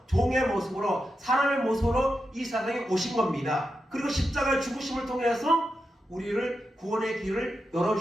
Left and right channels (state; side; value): normal; both; correlation 0.88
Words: 종의 모습으로 사람의 모습으로 이 세상에 오신 겁니다. 그리고 십자가의 죽으심을 통해서 우리를 구원의 길을